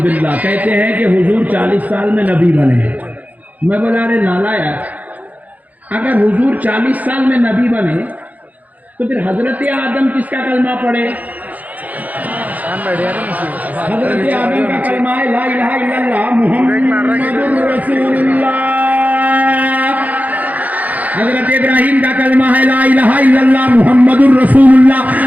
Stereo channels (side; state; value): left; late; 0.078 ms